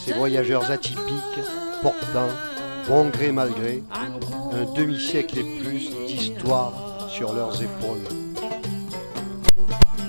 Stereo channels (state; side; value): inverted; both; correlation -1.00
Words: voyageurs atypiques, portant, bon gré mal gré, un demi-siècle et plus d'histoire sur leurs épaules?